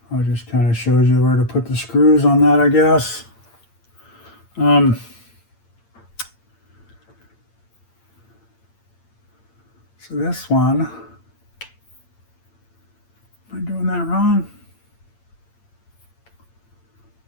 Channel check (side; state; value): right; late; 8.8 ms